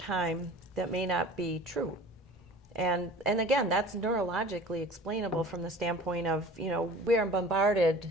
that may not be true. And again, that's neurologically explainable from the standpoint of, we are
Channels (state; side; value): normal; both; correlation 0.43